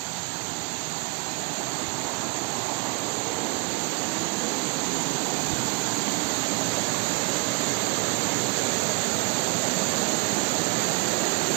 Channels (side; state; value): left; quieter; 26.9 dB